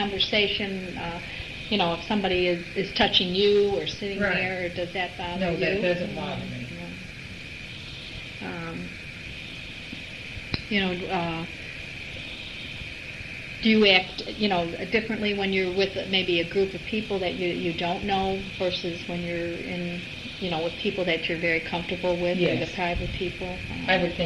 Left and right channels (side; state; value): both; identical; correlation 1.00